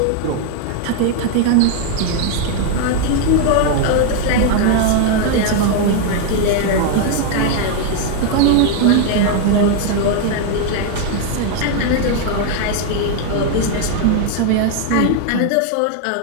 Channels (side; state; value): both; different; correlation 0.00